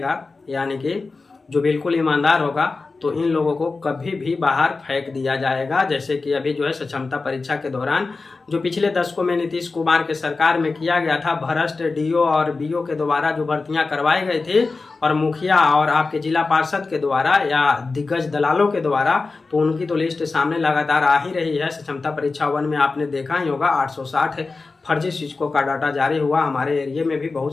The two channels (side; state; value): right; quieter; 3.9 dB